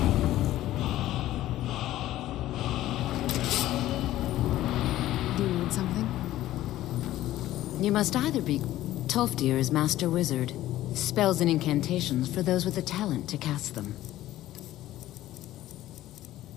Do you need something? You must either be... Tolfdir is Master Wizard. Spells and incantations for those with the talent to cast them.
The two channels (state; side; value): quieter; right; 14.5 dB